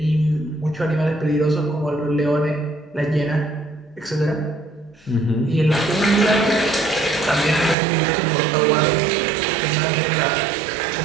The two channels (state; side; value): drops out; left; at 7.8 s